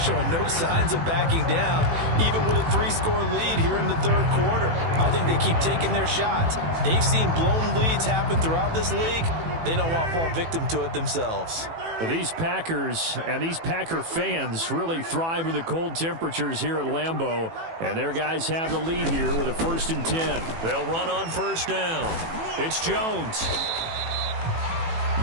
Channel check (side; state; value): left; late; 18 ms